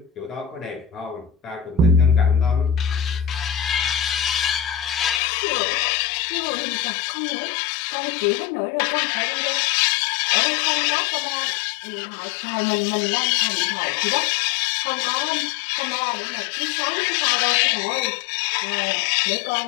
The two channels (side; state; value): right; drops out; at 5.2 s